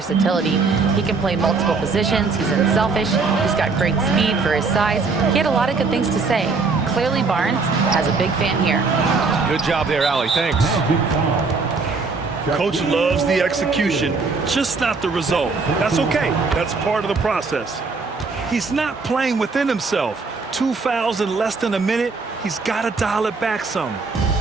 He can play multiple positions. He's unselfish. He's got great speed for his size. He had a lot of good things to say. Clearly, Barnes has a big fan here. Good job there, Allie. Thanks. Coach loves the execution, just not the result. That's okay. That's part of the process. He's not playing within himself. 2 fouls in less than a minute. He's got to dial it back some.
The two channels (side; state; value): left; quieter; 4.3 dB